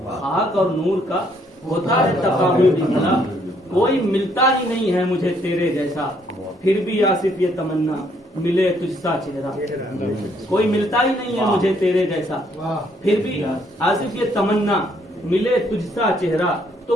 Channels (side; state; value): both; normal; correlation 0.68